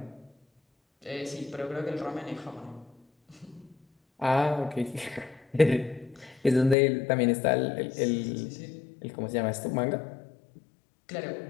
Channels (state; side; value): drops out; right; at 6.8 s